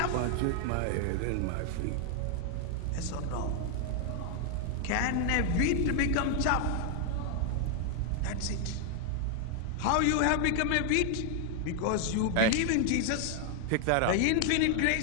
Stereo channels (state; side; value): different; both; correlation 0.00